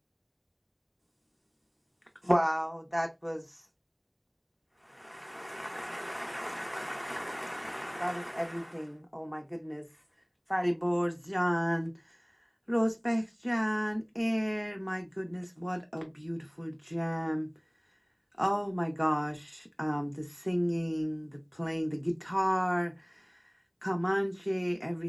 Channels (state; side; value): identical; both; correlation 1.00